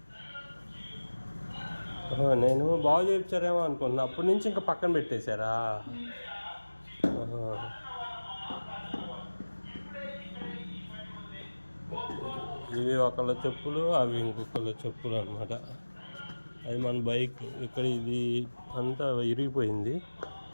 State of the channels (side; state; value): both; inverted; correlation -1.00